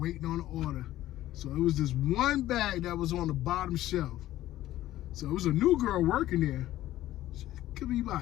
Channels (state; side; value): quieter; right; 14.5 dB